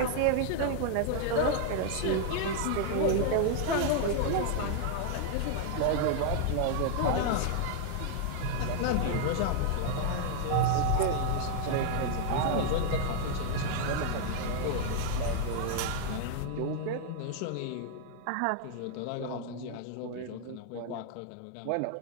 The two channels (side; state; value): both; different; correlation 0.00